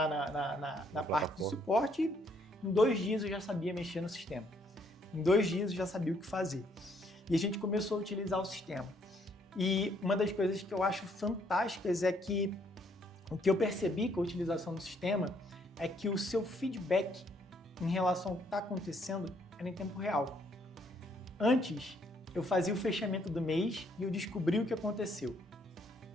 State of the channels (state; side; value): normal; both; correlation 0.69